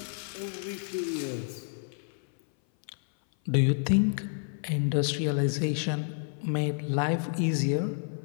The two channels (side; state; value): right; silent; 57 dB below the other